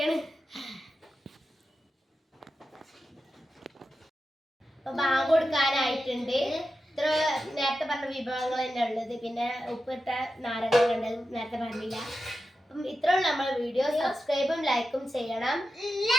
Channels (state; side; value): normal; both; correlation 0.91